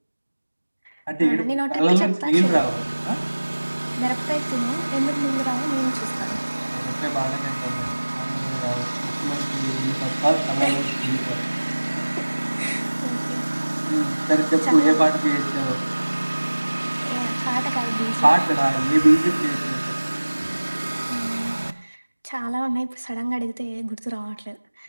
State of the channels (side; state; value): both; inverted; correlation -1.00